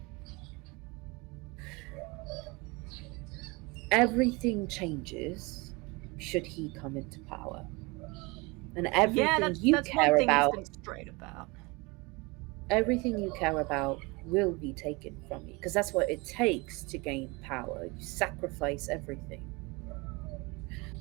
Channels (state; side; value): quieter; left; 26.2 dB